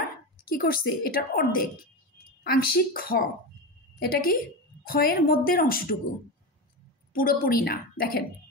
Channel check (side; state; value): both; normal; correlation 0.19